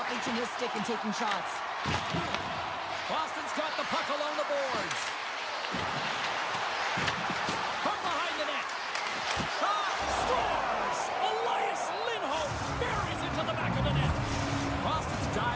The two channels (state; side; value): identical; both; correlation 1.00